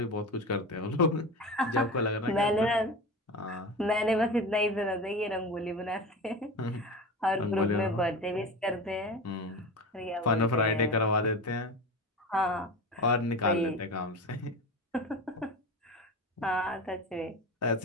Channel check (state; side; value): normal; both; correlation 0.28